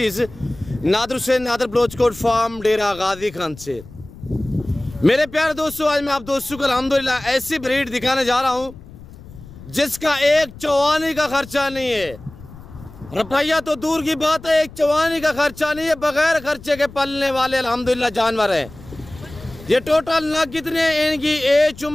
नादर हुसैन नादर बलोचकोट फार्म डेरा गाजी खान से। मेरे प्यारे दोस्तों, आज मैं आप दोस्तों को अल्हम्दुलिल्लाह ऐसी ब्रीड दिखाने जा रहा हूँ जिसका एक चवानी का खर्चा नहीं है। रुपया तो दूर की बात है, एक चवानी का खर्चा नहीं है। बगैर खर्चे के पलने वाले अल्हम्दुलिल्लाह जानवर हैं। ये टोटल नग कितने हैं, इनकी एज,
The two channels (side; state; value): left; noise; rumble, 18 dB below the sound